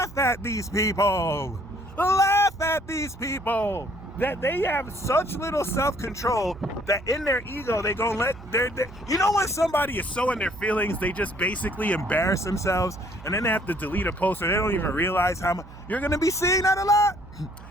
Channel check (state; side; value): noise; right; hum, 17 dB below the sound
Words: at these people. Laugh at these people. That they have such little self-control that in their ego they gonna let their you know when somebody is so in their feelings they just basically embarrass themselves and then they have to delete a post or they don't even realize how much. You're gonna be seeing that a lot.